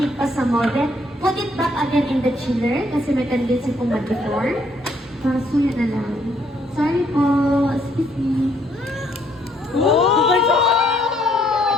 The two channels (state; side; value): normal; both; correlation 0.68